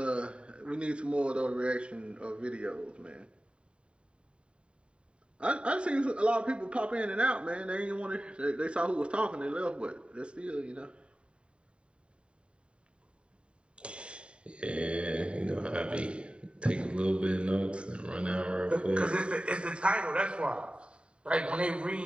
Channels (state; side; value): late; left; 0.056 ms